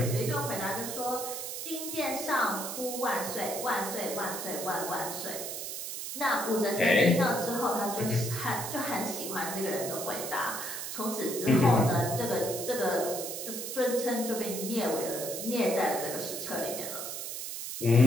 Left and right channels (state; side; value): noise; right; hiss, 6 dB below the sound